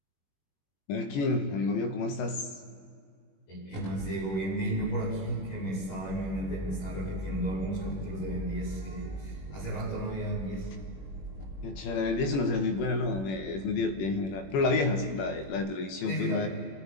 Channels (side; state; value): right; late; 21 ms